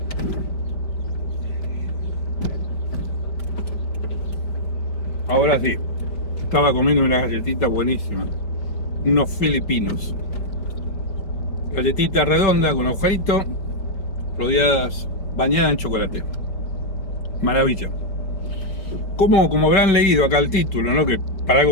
Ahora sí, estaba comiendo una galletita buenísima. Unos filipinos. Galletita redonda con agujerito, rodeadas, bañadas en chocolate. Maravilla. Como habrán leído acá el título, ¿no? Que para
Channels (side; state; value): right; late; 5.1 ms